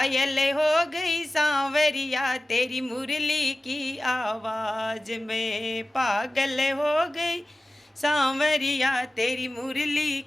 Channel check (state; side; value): normal; both; correlation 0.95